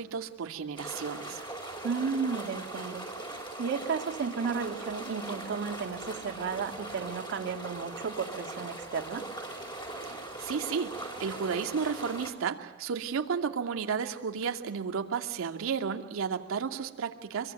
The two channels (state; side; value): quieter; left; 5.1 dB